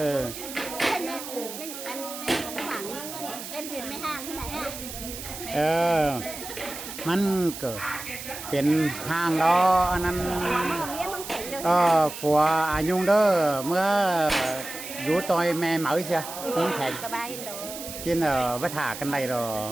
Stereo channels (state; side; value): noise; right; hiss, 10 dB below the sound